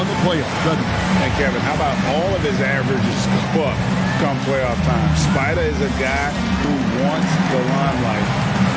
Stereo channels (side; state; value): both; identical; correlation 1.00